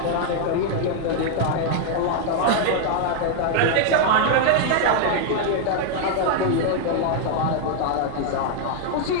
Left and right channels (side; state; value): both; different; correlation 0.00